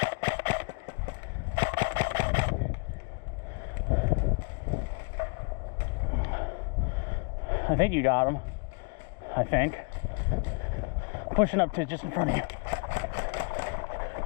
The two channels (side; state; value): right; quieter; 35.6 dB